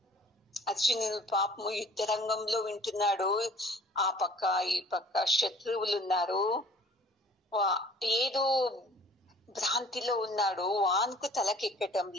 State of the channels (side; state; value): both; normal; correlation 0.50